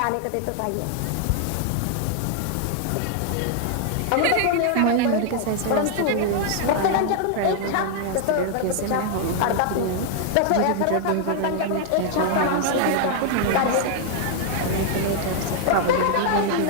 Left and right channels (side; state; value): both; different; correlation 0.00